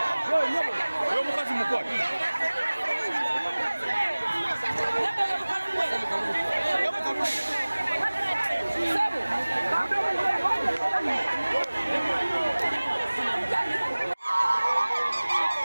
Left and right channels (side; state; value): both; inverted; correlation -1.00